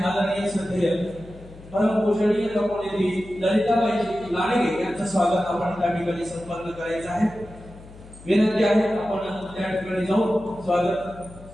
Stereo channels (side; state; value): left; noise; hum, 19 dB below the sound